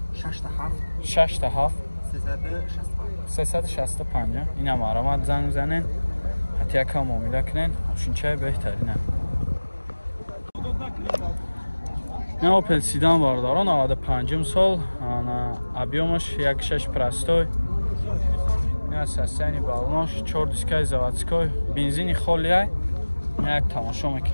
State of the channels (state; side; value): inverted; both; correlation -1.00